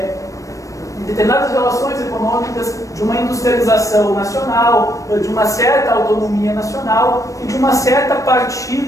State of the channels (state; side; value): late; right; 0.16 ms